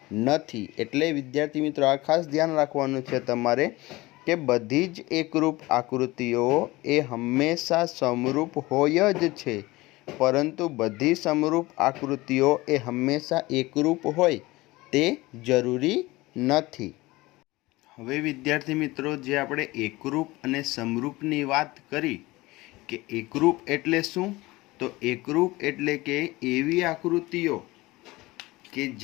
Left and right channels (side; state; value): right; quieter; 20.4 dB